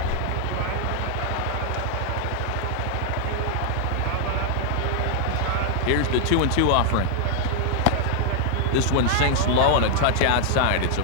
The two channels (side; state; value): both; different; correlation 0.00